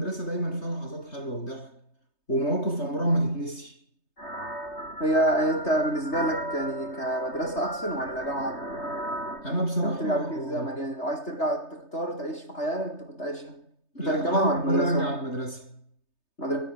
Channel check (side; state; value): right; late; 3.3 ms